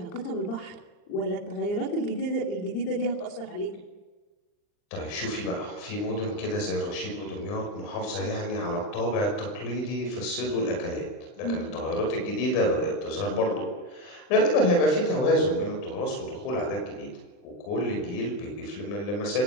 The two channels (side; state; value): right; late; 39 ms